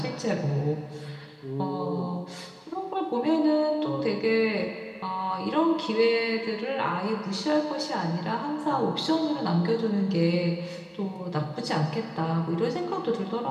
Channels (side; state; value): both; identical; correlation 1.00